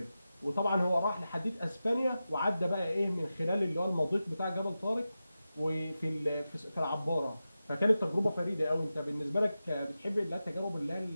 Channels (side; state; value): both; inverted; correlation -0.92